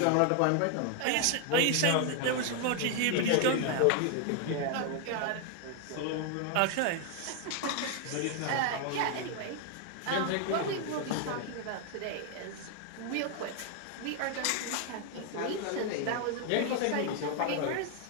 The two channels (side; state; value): both; different; correlation 0.00